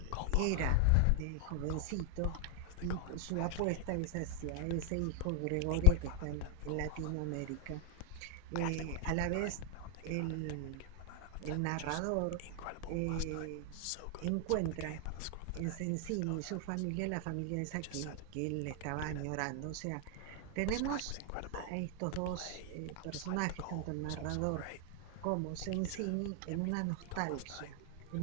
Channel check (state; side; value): different; both; correlation 0.00